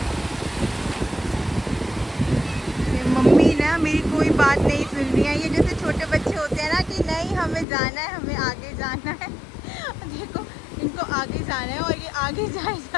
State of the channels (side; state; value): right; drops out; at 7.7 s